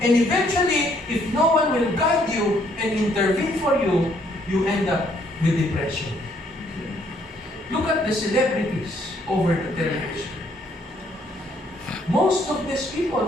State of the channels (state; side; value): normal; both; correlation 0.68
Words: and eventually, if no one will guide you and intervene for you, you end up with depression. Look at the celebrities over the television. Most of these people